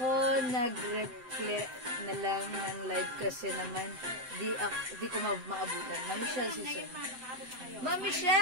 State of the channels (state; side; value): late; left; 7.8 ms